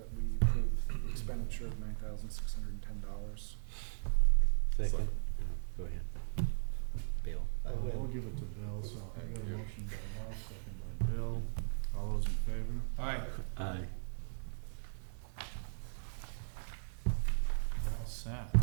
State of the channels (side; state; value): left; silent; 53 dB below the other